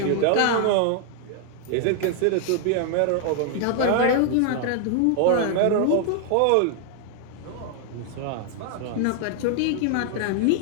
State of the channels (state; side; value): different; both; correlation 0.00